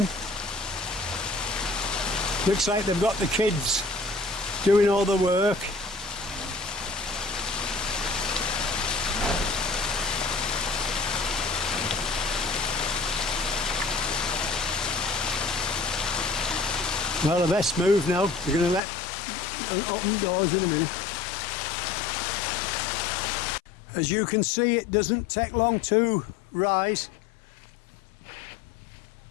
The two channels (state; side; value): drops out; right; at 18.8 s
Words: Looks like they've got the kids doing all the work. Well, the best move now. We're going to let and open doors in a minute. As you can see, it doesn't take long to rise.